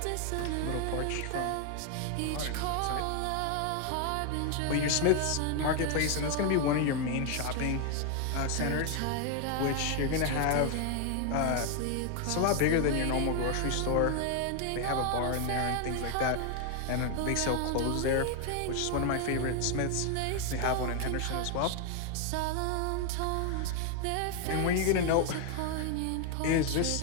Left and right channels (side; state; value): both; different; correlation 0.00